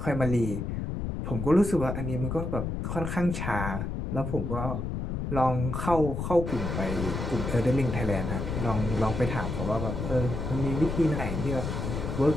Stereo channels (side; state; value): left; noise; rumble, 3 dB below the sound